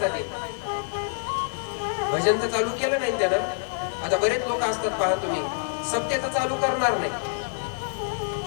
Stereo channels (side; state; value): right; silent; digital silence